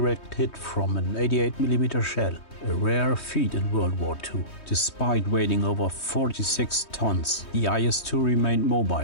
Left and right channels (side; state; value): right; late; 3.2 ms